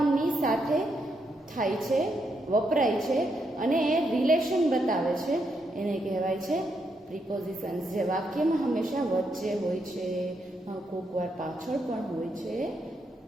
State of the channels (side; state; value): both; normal; correlation 0.80